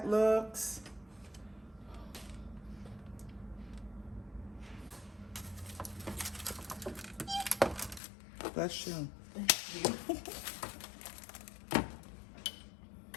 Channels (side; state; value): right; drops out; at 8.0 s